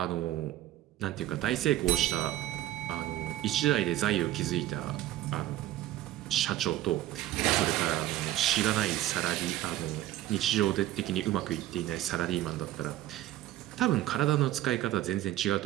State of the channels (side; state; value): left; quieter; 14.2 dB